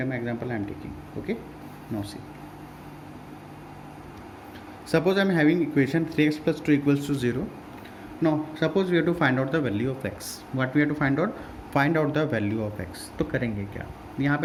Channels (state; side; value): identical; both; correlation 1.00